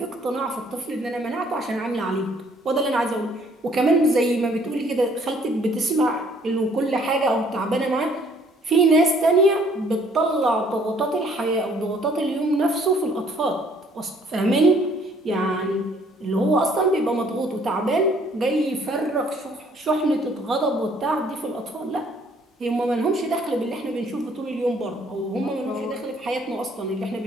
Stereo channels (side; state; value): both; normal; correlation 0.61